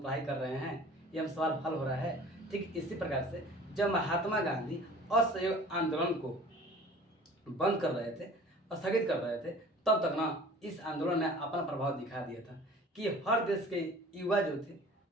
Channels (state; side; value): normal; both; correlation 0.46